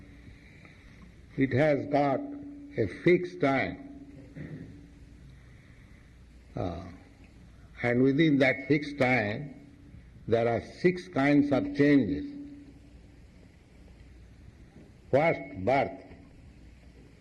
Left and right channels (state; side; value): identical; both; correlation 1.00